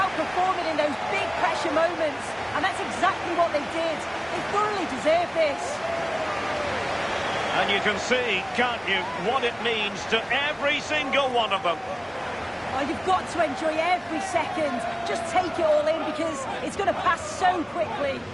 performing in those big pressure moments, and that's exactly what they did. They thoroughly deserve this. And you can see, can't you, what it means to every single one of them. Well, you've got to enjoy every second. Just take it all in because it's going to pass so quickly.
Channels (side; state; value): both; identical; correlation 1.00